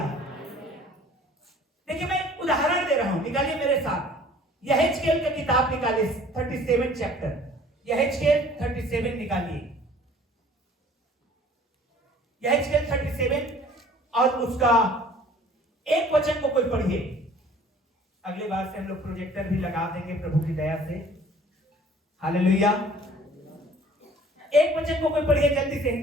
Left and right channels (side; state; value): both; normal; correlation 0.51